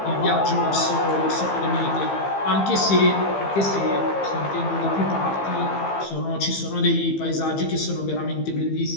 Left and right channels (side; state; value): right; late; 15 ms